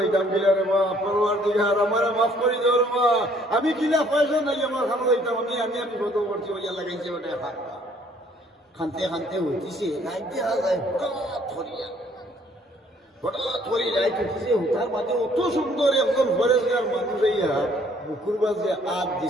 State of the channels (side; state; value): both; normal; correlation 0.61